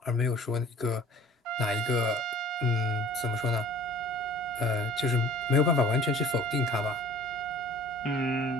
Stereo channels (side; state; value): both; normal; correlation 0.48